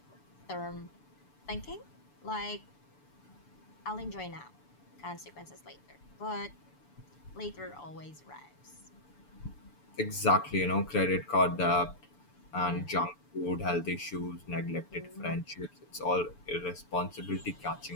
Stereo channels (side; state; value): right; late; 6.9 ms